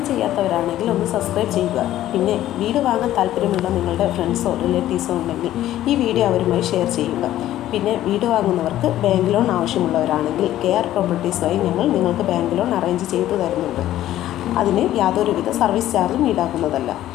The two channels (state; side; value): quieter; right; 13.4 dB